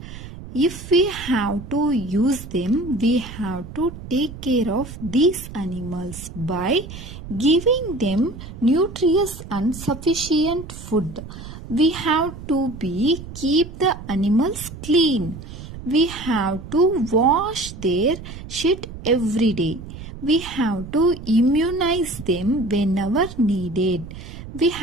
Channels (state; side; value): noise; right; rumble, 12 dB below the sound